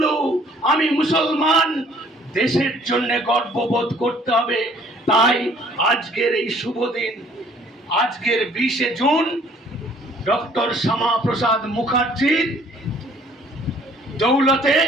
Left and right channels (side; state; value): both; normal; correlation 0.58